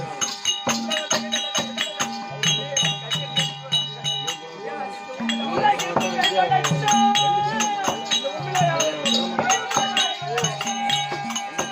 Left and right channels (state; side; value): identical; both; correlation 1.00